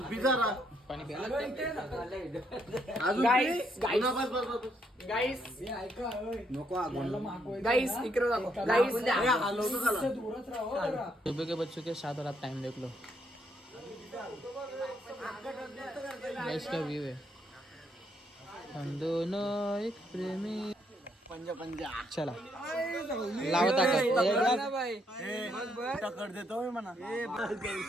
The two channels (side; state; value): both; normal; correlation 0.73